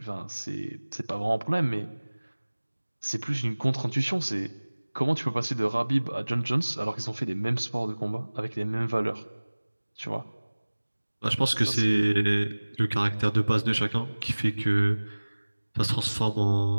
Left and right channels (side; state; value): both; inverted; correlation -1.00